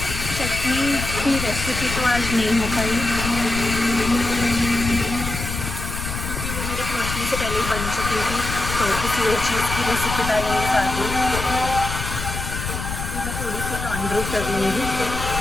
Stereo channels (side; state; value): left; noise; rumble, 5 dB below the sound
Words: चटनी की रेसिपी तो आज नहीं हो पाई क्योंकि वो मेरे पहुँचने से पहले ही बन चुकी थी। तो किसी और चीज़ की रेसिपी डालेंगे साथ में। अभी मैं थोड़ी सी लॉन्ड्री कर लूँगी।